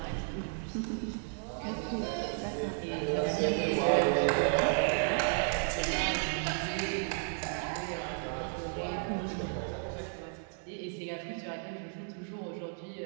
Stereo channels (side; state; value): left; silent; 56 dB below the other